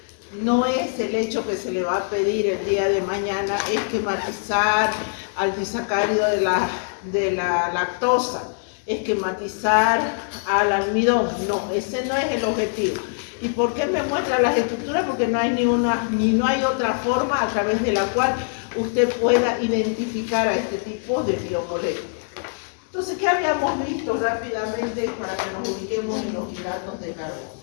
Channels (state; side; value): silent; right; 60 dB below the other